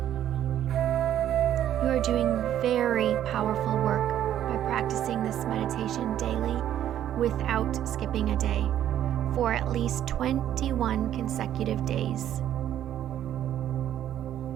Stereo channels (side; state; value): left; quieter; 11.2 dB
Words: You are doing very powerful work by practicing this meditation daily without skipping a day for at least 21 consecutive days.